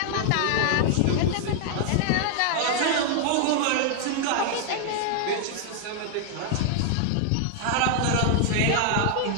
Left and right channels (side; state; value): both; different; correlation 0.00